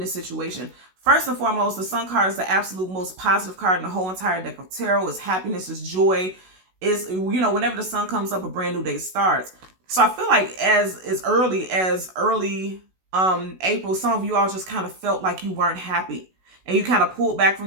the situation. First and foremost, the Sun card is the absolute most positive card in the whole entire deck of tarot. It's happiness, it's joy. It's, you know, whenever the sun comes up, a brand new day starts. So I feel like as early April, some of you all just kind of felt like you weren't happy and you kind of pulled back from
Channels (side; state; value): left; late; 16 ms